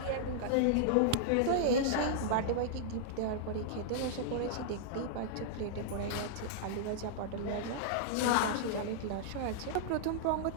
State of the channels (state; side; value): different; both; correlation -0.01